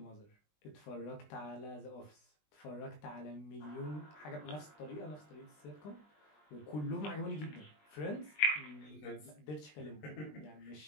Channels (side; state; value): right; late; 20 ms